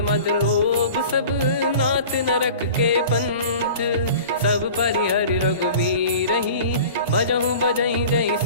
मद लोभ सब नाथ नरक के पंथ सब परिहरि रघुवीर ही भजहु भजहि जय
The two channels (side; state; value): both; inverted; correlation -0.41